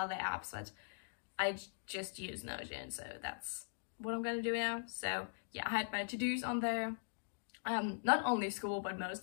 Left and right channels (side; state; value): right; silent; digital silence